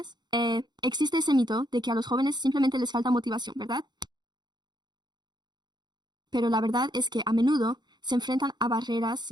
Existe ese mito de que a los jóvenes simplemente les falta motivación, ¿verdad? Pero la verdad es que a menudo se enfrentan a barreras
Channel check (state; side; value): late; left; 0.21 ms